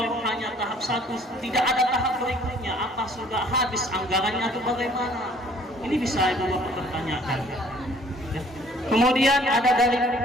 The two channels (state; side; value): normal; both; correlation 0.57